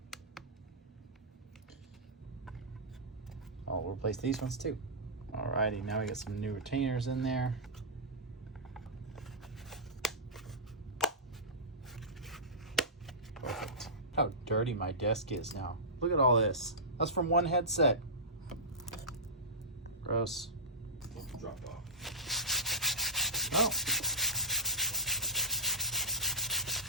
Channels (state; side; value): normal; both; correlation -0.15